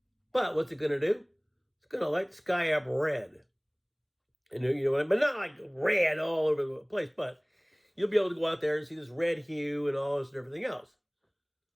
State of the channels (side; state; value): both; identical; correlation 1.00